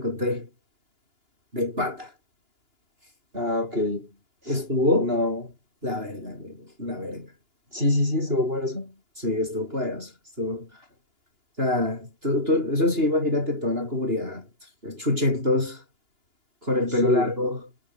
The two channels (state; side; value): late; left; 2.9 ms